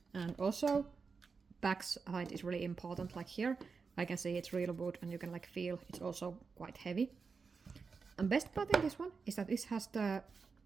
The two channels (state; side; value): quieter; left; 5.0 dB